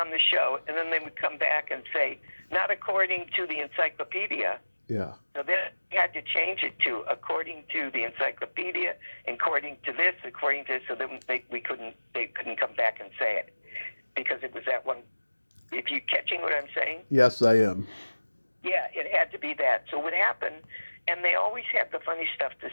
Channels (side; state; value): both; inverted; correlation -1.00